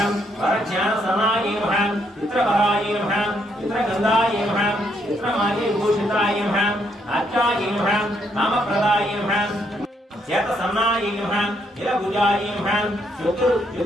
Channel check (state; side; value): normal; both; correlation 0.73